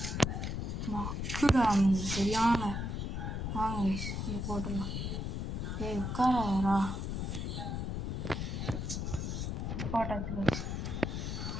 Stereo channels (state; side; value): noise; left; rumble, 2 dB below the sound